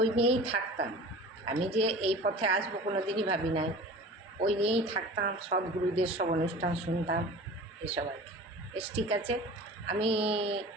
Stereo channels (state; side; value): normal; both; correlation 0.39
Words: নিয়েই থাকতাম। আমি যে এই পথে আসবো কোনো দিনই ভাবি নাই। ওই নিয়েই থাকতাম, সদ্গুরুদের সব অনুষ্ঠান শুনতাম, এসব আর কি। বেশ, ঠিক আছে। আমি